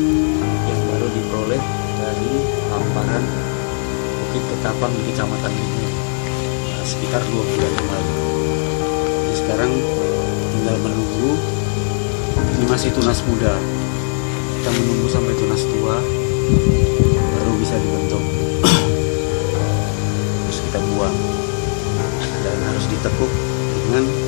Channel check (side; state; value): right; silent; digital silence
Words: Bukit Ketapang di Kecamatan ini sekitar 2 bulan yang lalu. Jadi sekarang tinggal menunggu. Ini masih tunas muda, kita menunggu sampai tunas tua baru bisa dibentuk. Terus kita buang dan harus ditekuk dengan